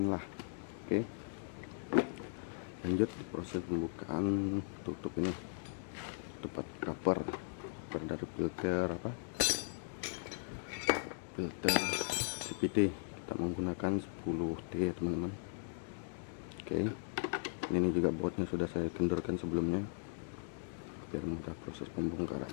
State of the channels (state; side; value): silent; right; digital silence